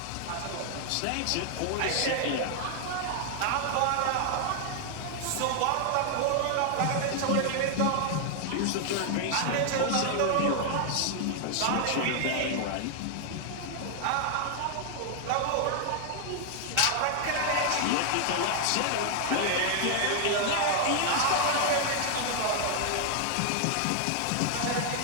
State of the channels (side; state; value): both; different; correlation 0.00